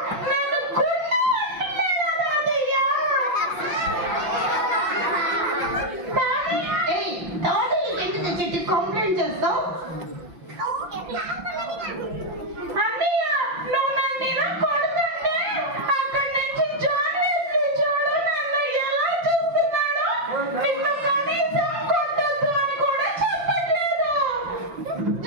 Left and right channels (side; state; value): left; late; 5.7 ms